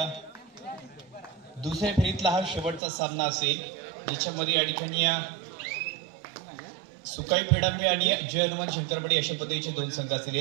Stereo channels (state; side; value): drops out; left; at 2.8 s